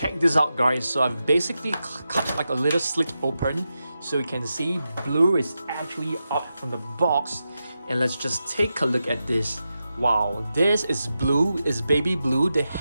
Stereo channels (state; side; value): inverted; both; correlation -0.90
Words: this out guys. So I've basically cut like a little slit open, so you can see Blue is actually up from the box. And let's just take a look at this. Wow, this is Blue, is baby Blue. The